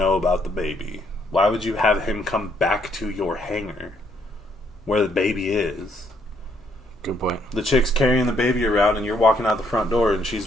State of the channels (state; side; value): normal; both; correlation 0.71